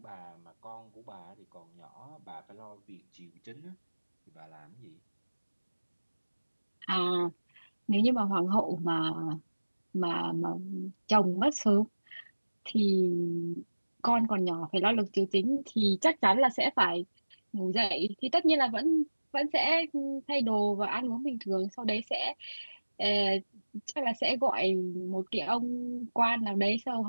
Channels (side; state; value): both; inverted; correlation -1.00